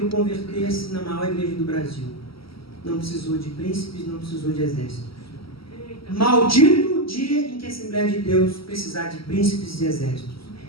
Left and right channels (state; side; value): late; right; 0.75 ms